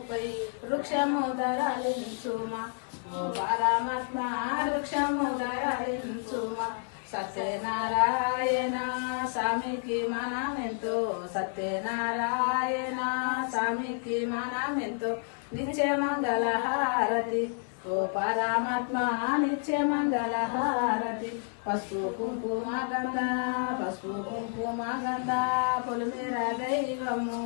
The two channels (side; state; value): right; silent; 58 dB below the other